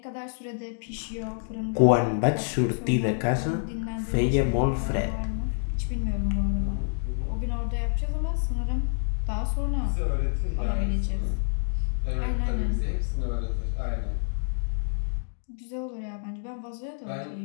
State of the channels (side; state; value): right; silent; digital silence